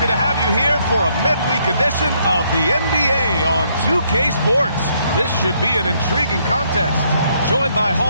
to have you here for a midweek edition of the NBA on 2K Sports. This should be an intriguing contest. Joined by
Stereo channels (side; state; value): both; inverted; correlation -0.71